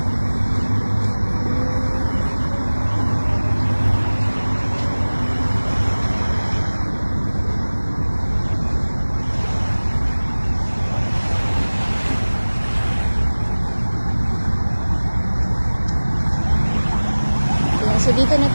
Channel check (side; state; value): both; inverted; correlation -1.00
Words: So dito na